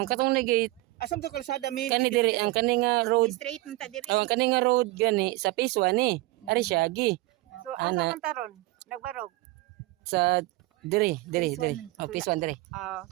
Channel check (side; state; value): left; quieter; 19.8 dB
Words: katong na gate Asam to kalsada mi? kani dire ang kani nga road. straight man ta diri. Ang kani nga road gani sa phase 1 ni. Ari siya gi. So, asa Ana. man taron? Nagbarog? Sa dire. Phase one. Oh, phase 1 dire.